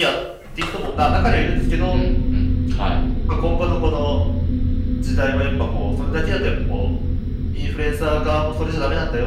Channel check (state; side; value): identical; both; correlation 1.00